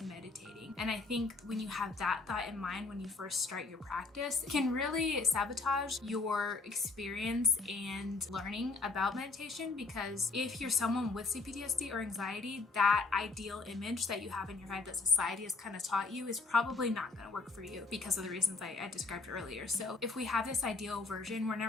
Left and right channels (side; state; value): right; quieter; 3.8 dB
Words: meditating. And I think when you have that thought in mind when you first start your practice, it can really sabotage your experience and learning about meditation, because if you're someone with CPTSD or anxiety, that ideal image that you have in your head that society has kind of taught you is probably not going to work for you because of the reasons I described earlier. So if we have this ideal version, we're